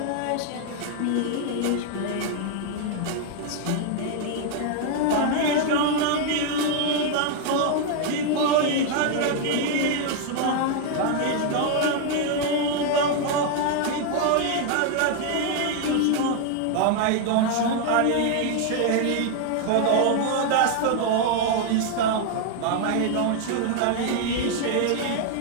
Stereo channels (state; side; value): different; both; correlation 0.00